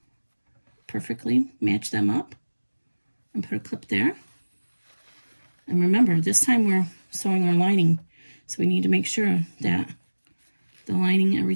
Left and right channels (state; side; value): inverted; both; correlation -1.00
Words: perfectly. Match them up and put a clip there. And remember, this time we're sewing our lining, so we need to make sure that the lining,